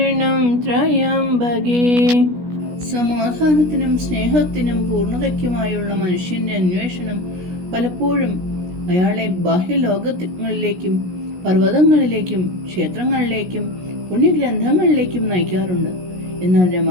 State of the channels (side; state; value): left; late; 16 ms